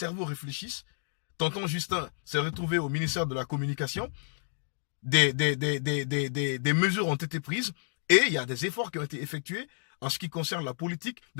réfléchissent. Tonton Justin s'est retrouvé au ministère de la Communication. des mesures ont été prises et il y a des efforts qui ont été effectués en ce qui concerne la politique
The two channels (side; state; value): right; silent; digital silence